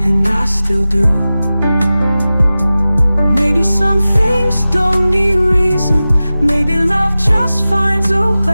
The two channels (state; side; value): inverted; both; correlation -0.96